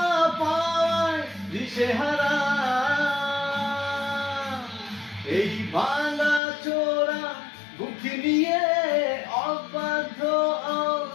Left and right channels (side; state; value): right; drops out; at 6.4 s